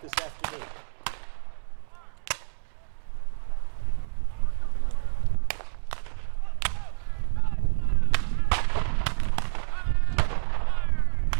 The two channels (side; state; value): left; silent; digital silence